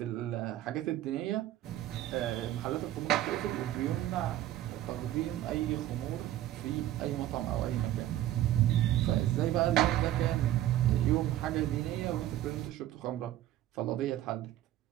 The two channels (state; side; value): quieter; left; 13.4 dB